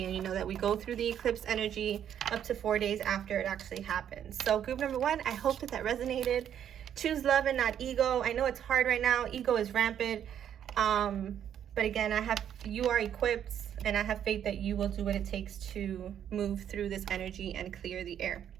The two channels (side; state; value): left; quieter; 9.6 dB